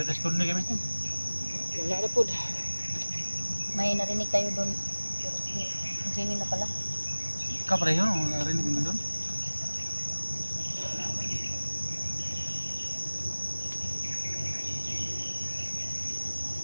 respond ni kami. Wala na pod. May narinig tayo doon. Pero si Jenny na pala. Ka pareho, narinig mo doon?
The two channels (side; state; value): both; inverted; correlation -1.00